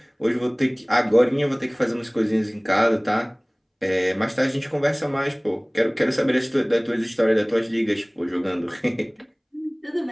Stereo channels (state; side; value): identical; both; correlation 1.00